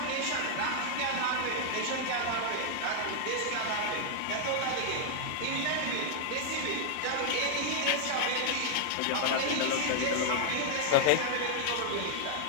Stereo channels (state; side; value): different; both; correlation 0.00